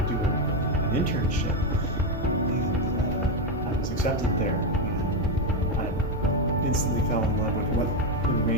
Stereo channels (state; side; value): normal; both; correlation 0.08